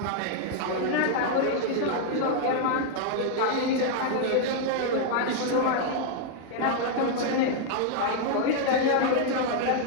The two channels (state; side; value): different; both; correlation 0.00